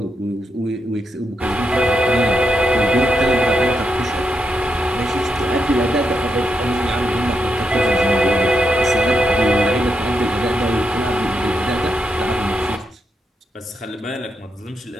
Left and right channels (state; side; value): normal; both; correlation 0.82